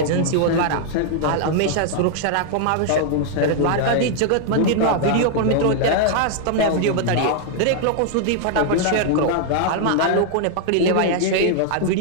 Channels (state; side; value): different; both; correlation 0.00